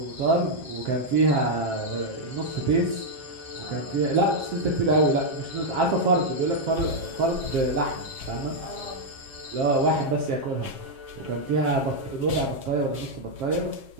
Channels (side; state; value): left; late; 7.5 ms